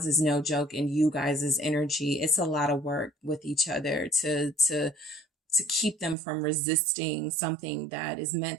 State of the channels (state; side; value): drops out; left; at 6.2 s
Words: is no joke in you guys' energy. It's a lot of work with each other to keep them from resisting something that is meant